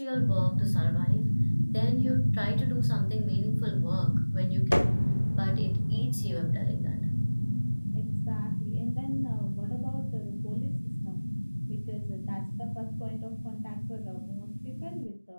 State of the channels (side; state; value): both; inverted; correlation -1.00